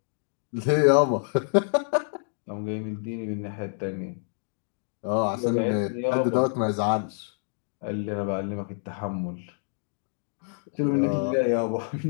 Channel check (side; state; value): right; silent; digital silence